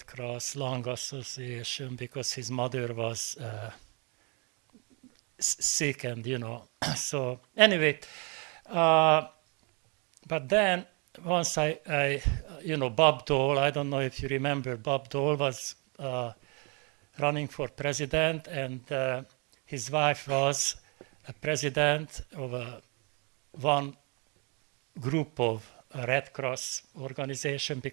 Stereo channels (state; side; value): quieter; left; 33.2 dB